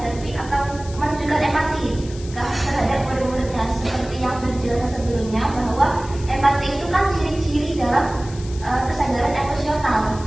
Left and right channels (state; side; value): noise; left; hiss, 18 dB below the sound